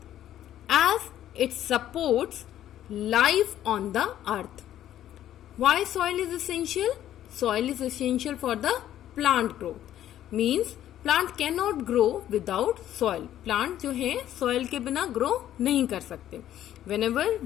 as it supports life on the earth. Why soil is essential? Soil is essential for the plant growth. Means plant cannot grow without soil. Plant जो है soil के बिना grow नहीं कर सकते. Whenever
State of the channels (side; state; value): right; quieter; 11.9 dB